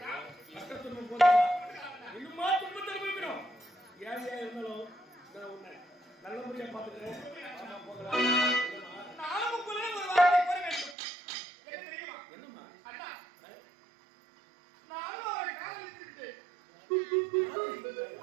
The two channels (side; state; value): left; drops out; at 11.0 s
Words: இன்னுமா துன்பத்தை அனுபவிக்கணும். ஏன் இருந்தாலும் நல்ல முறையா பாத்துக்கிறேன். என்னம்மா